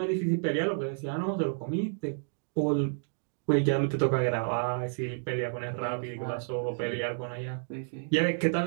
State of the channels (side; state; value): left; silent; digital silence